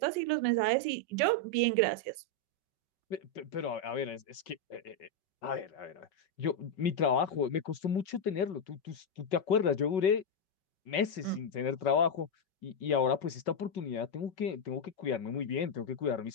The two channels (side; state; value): right; late; 5.3 ms